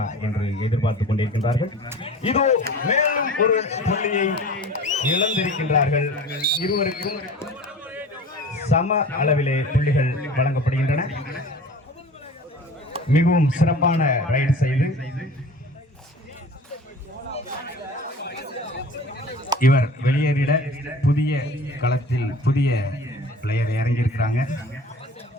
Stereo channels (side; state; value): both; normal; correlation 0.41